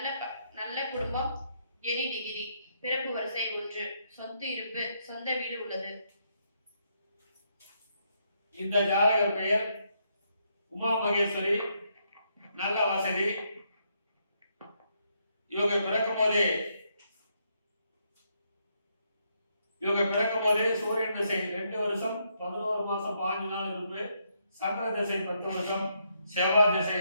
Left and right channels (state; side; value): inverted; both; correlation -0.76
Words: நல்ல குடும்பம், எனி டிகிரி, பிறப்பு வரிசை 1, சொத்து இருப்பு, சொந்த வீடு உள்ளது. இந்த ஜாதகர் பெயர் உமா மகேஸ்வரி, நல்ல வசதி. இவங்க பிறக்கும் போதே சூரியன் திசை 2 வருஷம் 11 மாசம் 5 நாள் இருப்பு, சந்திர திசை 10 வருஷம், செவ்வாய் திசை